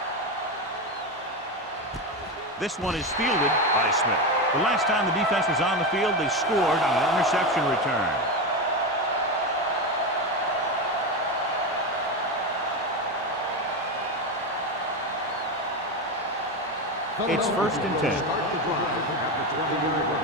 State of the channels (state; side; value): normal; both; correlation 0.15